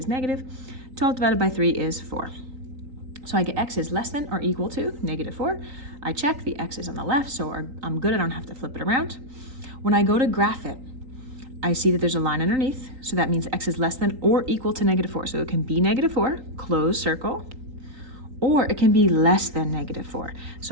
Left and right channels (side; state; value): left; late; 3.8 ms